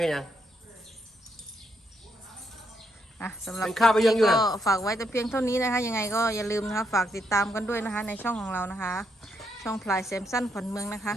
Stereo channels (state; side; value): normal; both; correlation 0.77